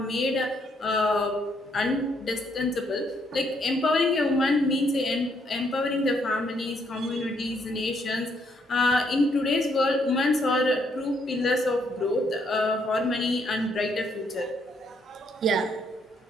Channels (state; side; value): normal; both; correlation 0.72